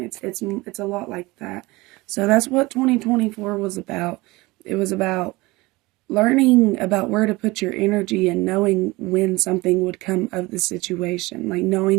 It's a lot like that. So that's what 2024 was about. It was about learning about where to put your energy and knowing when something would come of the situation, like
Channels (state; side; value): quieter; left; 21.9 dB